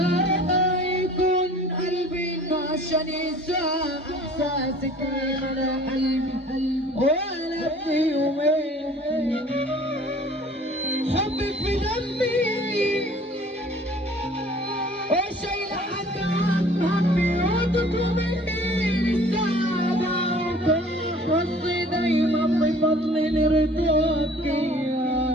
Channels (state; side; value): normal; both; correlation 0.50